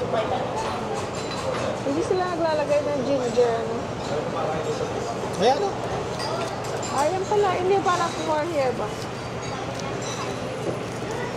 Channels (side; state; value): both; identical; correlation 1.00